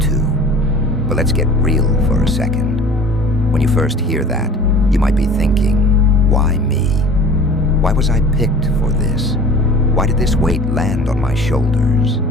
too. But let's get real for a second. When you first hear that, you might be thinking, why me? Why was I picked for this? Why did this weight land on my shoulders?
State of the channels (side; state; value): both; normal; correlation 0.43